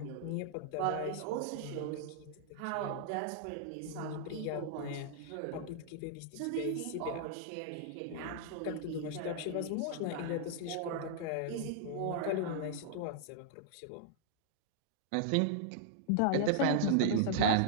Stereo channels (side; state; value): both; different; correlation -0.02